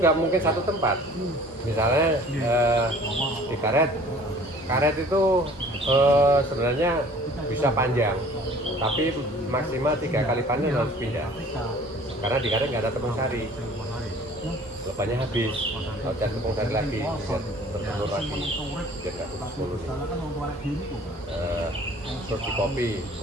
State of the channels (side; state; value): both; normal; correlation 0.50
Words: nggak mungkin satu tempat. Misalnya di karet itu sebenarnya bisa panjang tapi maksimal 3 kali panen harus pindah karena di karet nggak ada tepung sari, lebahnya habis, harus cari tepung sari lagi biar tertelur lagi biar nggak tutup koloni. Terus di